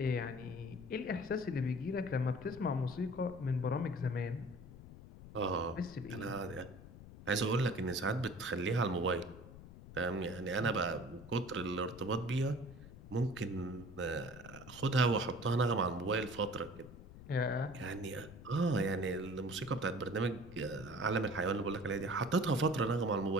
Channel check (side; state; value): left; noise; rumble, 16 dB below the sound